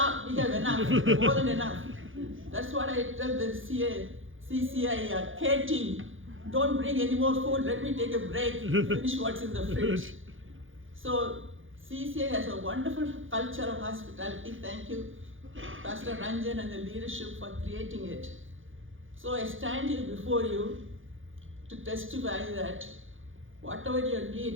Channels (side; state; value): left; late; 0.58 ms